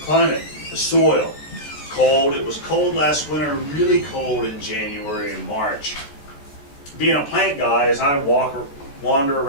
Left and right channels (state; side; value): late; right; 14 ms